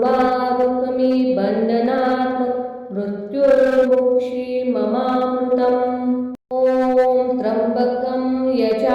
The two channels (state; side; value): identical; both; correlation 1.00